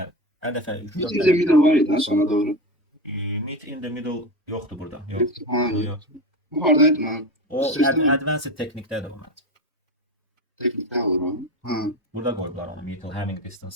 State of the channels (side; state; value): both; normal; correlation 0.21